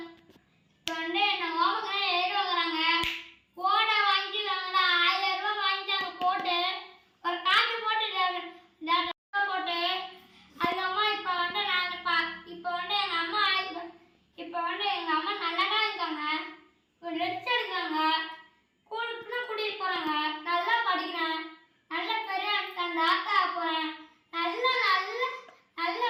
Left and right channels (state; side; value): identical; both; correlation 1.00